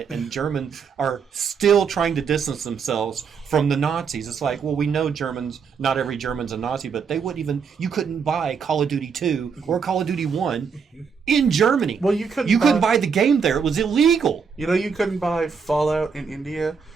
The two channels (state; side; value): quieter; left; 6.0 dB